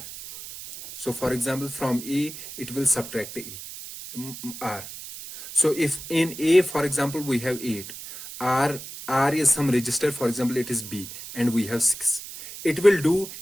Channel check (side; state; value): right; noise; hiss, 12 dB below the sound